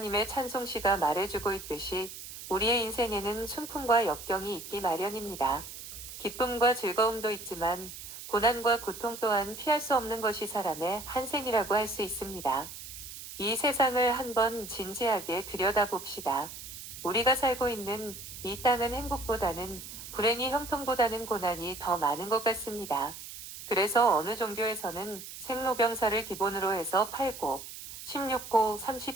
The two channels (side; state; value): right; noise; hiss, 12 dB below the sound